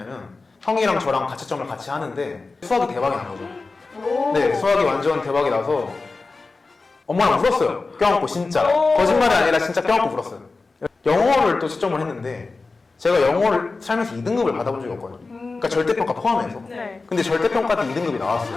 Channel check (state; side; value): quieter; right; 3.8 dB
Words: 형이랑 저랑 가채점을 같이 하는데 수학이 대박이 난 거죠. 네, 수학이 완전 대박이 나서 엄마랑 울었어요. 껴안고 진짜. 거짓말이 아니라 진짜 껴안고 울었어요. 영어를 또 채점을 했는데 제가 영어를 살면서 2등급을 받아본 적이 없거든요. 그러니까 절대평가 포함해서. 근데 절대평가 때 2등급이